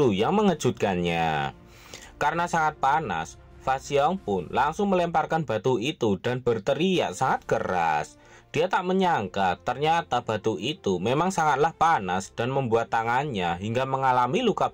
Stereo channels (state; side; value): identical; both; correlation 1.00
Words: yang mengejutkannya. Karena sangat panas, Fasyong pun langsung melemparkan batu itu dan berteriak sangat keras. Dia tak menyangka ternyata batu itu memang sangatlah panas dan membuat tangannya hingga mengalami luka